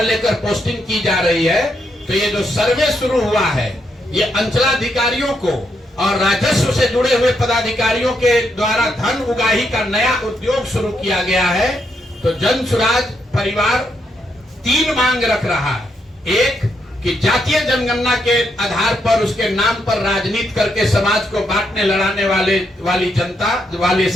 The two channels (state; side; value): normal; both; correlation 0.79